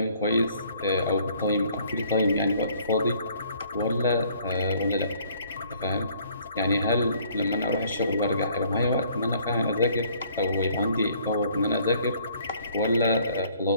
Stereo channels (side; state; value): both; inverted; correlation -0.60